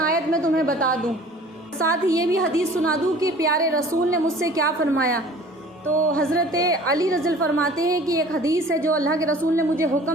آیت میں تمہیں بتا دوں، ساتھ یہ بھی حدیث سنا دوں کہ پیارے رسول نے مجھ سے کیا فرمایا. تو حضرت علی رضی اللہ فرماتے ہیں کہ ایک حدیث ہے جو اللہ کے رسول نے مجھے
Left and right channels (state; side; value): normal; both; correlation 0.47